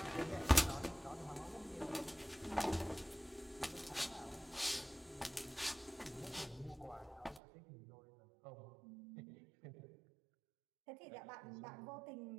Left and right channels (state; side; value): drops out; left; at 7.4 s